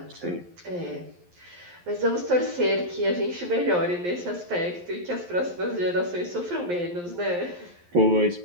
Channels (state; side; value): late; left; 11 ms